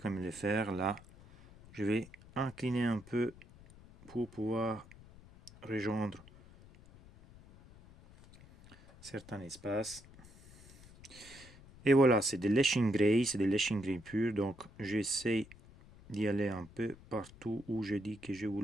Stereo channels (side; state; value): left; noise; rumble, 21 dB below the sound